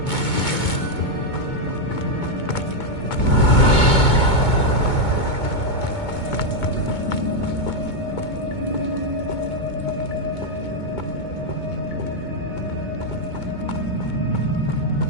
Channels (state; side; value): late; right; 2.2 ms